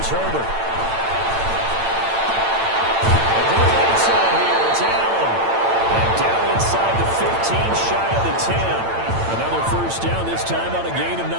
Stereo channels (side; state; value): left; late; 8.9 ms